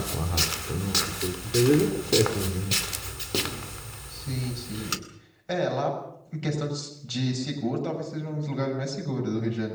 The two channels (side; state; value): both; identical; correlation 1.00